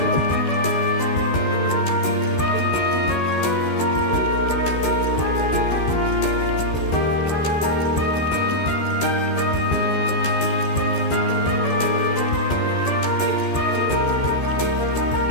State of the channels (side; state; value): right; late; 13 ms